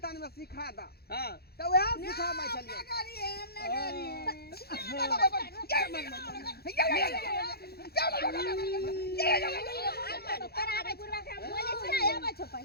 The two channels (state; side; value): late; right; 0.46 ms